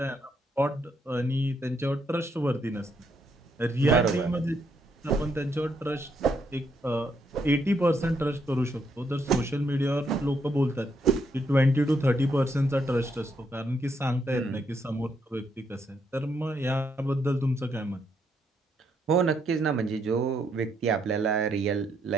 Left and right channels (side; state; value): both; normal; correlation 0.76